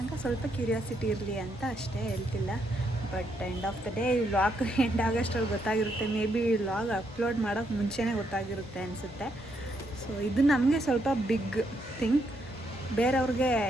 ತನಕ ಸ್ವಲ್ಪ ಕ್ಯೂರಿಯಾಸಿಟಿ ಇರಲಿ ಅಂತ ಅಷ್ಟೇ, ಹೇಳ್ತಿಲ್ಲ. But end of the day ಈ ವ್ಲಾಗ್ ಎಂಡ್ ಆಗೋಷ್ಟರಲ್ಲಿ ಗೊತ್ತಾಗಿರುತ್ತೆ. ಮೇ ಬಿ ಈ ವ್ಲಾಗ್ ಅಪ್ಲೋಡ್ ಮಾಡೋಕ್ಕೆ ಮುಂಚೆನೇ ಗೊತ್ತಾಗಿರುತ್ತೆ ಅನಿಸುತ್ತೆ. ಸೊ ಇದು ನಮಗೆ ಸ್ವಲ್ಪ ಬಿಗ್ ಥಿಂಗ್. ಬೇರೆಯವ್ರಿಗೆ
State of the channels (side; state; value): both; normal; correlation 0.76